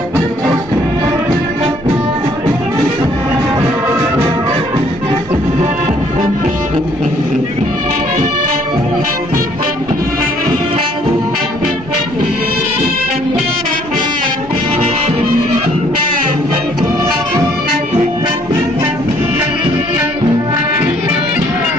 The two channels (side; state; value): both; normal; correlation 0.63